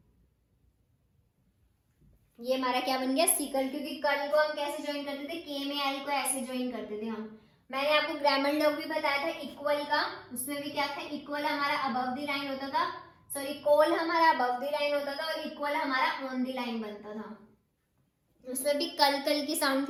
ये हमारा क्या बन गया, सीकल। क्योंकि कल को हम कैसे ज्वाइन करते थे, के में एल को ऐसे ज्वाइन करते थे हम। मैंने आपको ग्रामर लॉग भी बताया था इक्वल का, उसमें भी क्या था, इक्वल हमारा अबव द लाइन होता था, सॉरी कोल हमारा अबव द लाइन होता था और इक्वल हमारा ऑन द लाइन बनता था। उसमें भी कल कल की साउंड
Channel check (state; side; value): identical; both; correlation 1.00